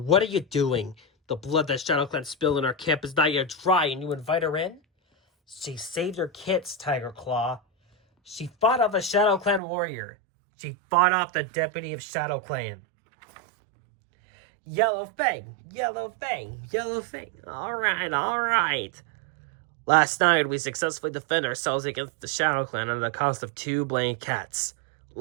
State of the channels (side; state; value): left; drops out; at 9.6 s